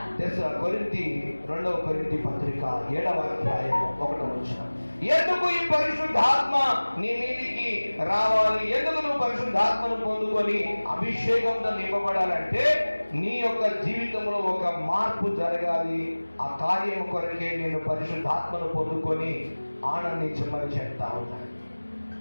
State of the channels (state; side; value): inverted; both; correlation -1.00